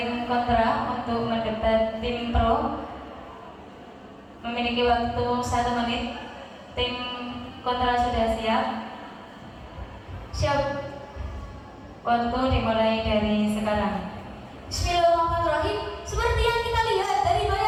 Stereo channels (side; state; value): both; identical; correlation 1.00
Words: kontra untuk mendebat tim pro. Memiliki waktu 1 menit. Tim kontra sudah siap? Siap. Waktu dimulai dari sekarang. Bismillahirrahmanirrahim. Seperti yang kita lihat dari